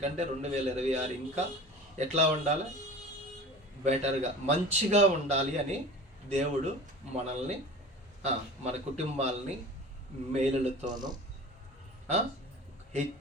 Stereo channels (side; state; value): both; normal; correlation 0.37